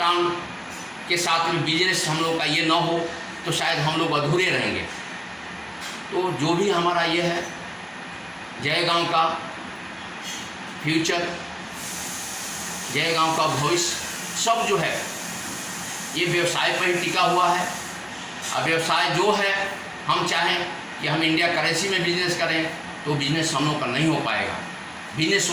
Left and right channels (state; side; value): identical; both; correlation 1.00